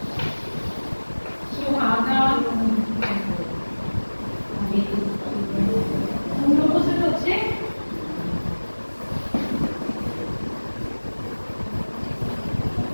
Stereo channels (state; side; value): inverted; both; correlation -1.00